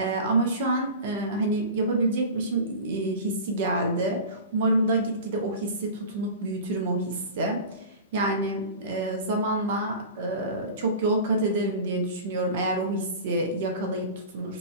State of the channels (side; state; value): both; inverted; correlation -0.32